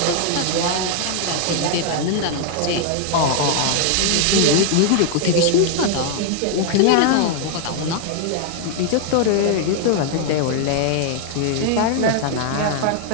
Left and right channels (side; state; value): both; different; correlation 0.00